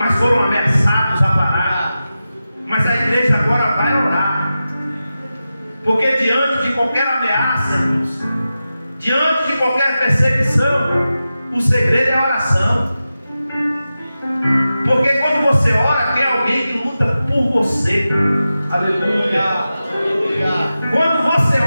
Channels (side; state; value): both; inverted; correlation -0.93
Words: foram ameaçados a parar. Mas a igreja agora vai orar, porque diante de qualquer ameaça, irmãos, diante de qualquer perseguição, o segredo é a oração. Porque quando você ora, tem alguém que luta por você. Aleluia. Quando você